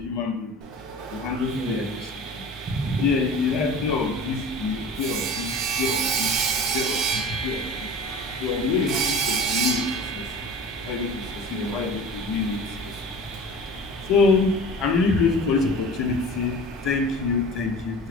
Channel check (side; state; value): both; normal; correlation 0.38